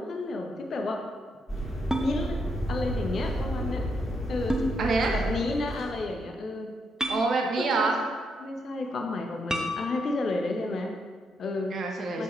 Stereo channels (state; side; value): normal; both; correlation 0.79